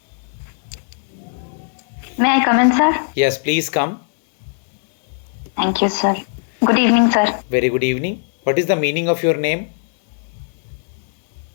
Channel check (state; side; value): silent; right; 66 dB below the other